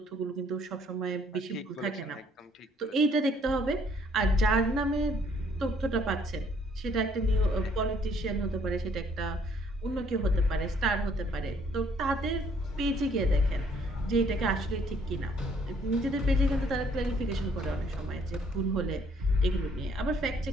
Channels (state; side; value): normal; both; correlation 0.63